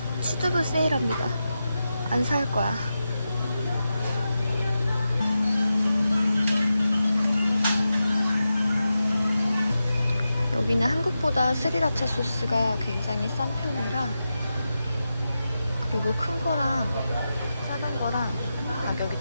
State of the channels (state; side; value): inverted; both; correlation -0.90